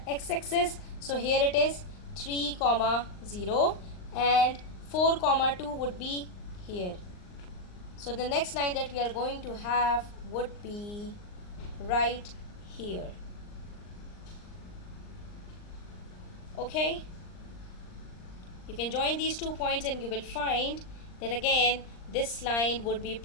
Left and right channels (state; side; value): late; right; 39 ms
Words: x-axis. So here it is 3 comma 0 and 4 comma 2 would be here. So the next line that we are going to have would be right here. Okay, you can join these 2 points and you will find that again this line would be